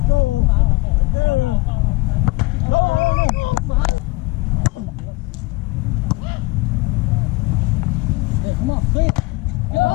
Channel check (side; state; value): right; quieter; 22.9 dB